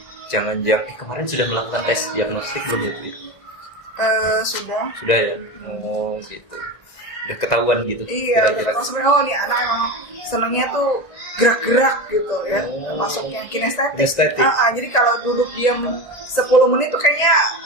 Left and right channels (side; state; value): right; late; 1.5 ms